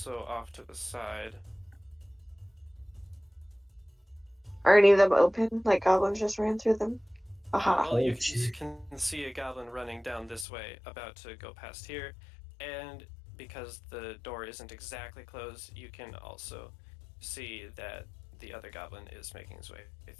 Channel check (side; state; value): right; drops out; at 10.5 s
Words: off to the side. Are any of them open? Like goblins just ran through them? Aha. Well, you Okay. can see a goblin running down this way, about to go past here, and because the door isn't exactly closed, you can also see that the other goblin is making his way